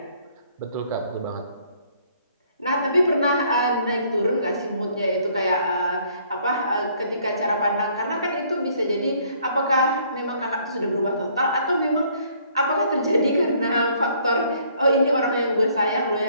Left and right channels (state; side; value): inverted; both; correlation -0.62